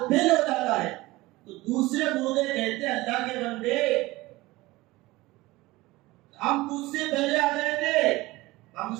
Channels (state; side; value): quieter; left; 19.8 dB